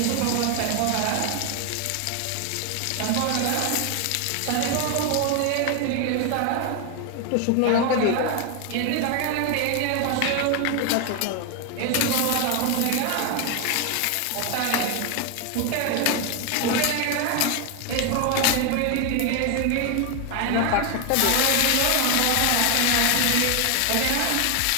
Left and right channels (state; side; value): different; both; correlation 0.01